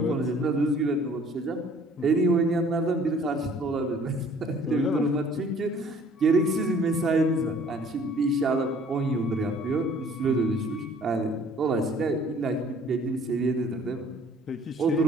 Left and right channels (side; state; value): both; normal; correlation 0.56